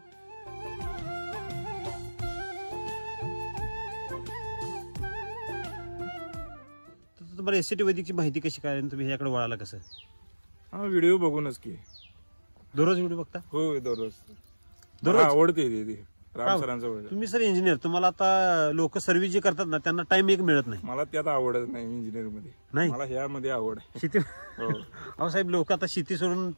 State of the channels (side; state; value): both; inverted; correlation -1.00